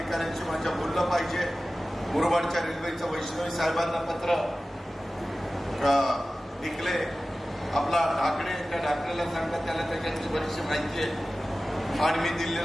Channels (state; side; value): normal; both; correlation 0.96